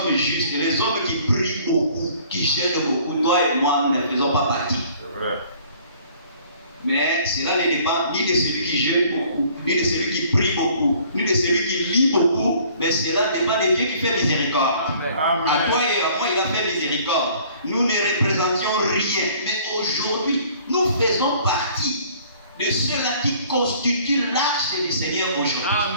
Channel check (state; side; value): inverted; both; correlation -0.55